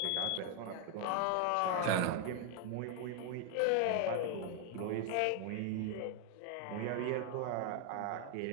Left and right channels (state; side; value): different; both; correlation 0.01